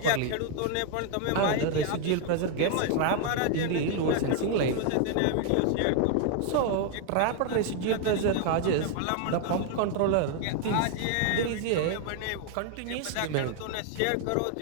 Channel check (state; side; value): different; both; correlation 0.00